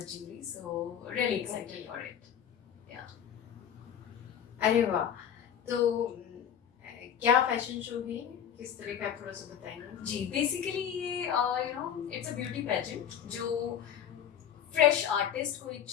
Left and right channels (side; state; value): right; quieter; 9.0 dB